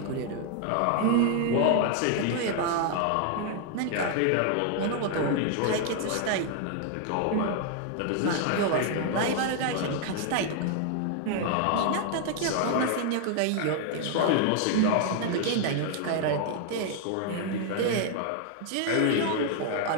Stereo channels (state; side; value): different; both; correlation 0.00